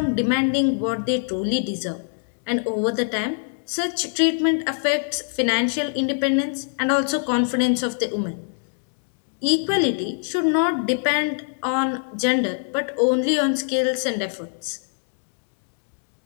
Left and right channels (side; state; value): right; silent; digital silence